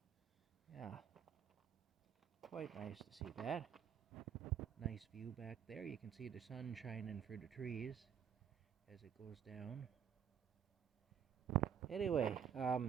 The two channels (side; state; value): left; quieter; 8.4 dB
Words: Yeah, quite nice to see that. Nice view back there. You can see the sun shining through the trees as it goes down. Anyway,